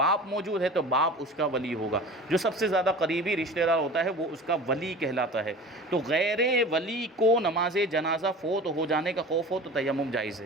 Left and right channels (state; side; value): normal; both; correlation 0.37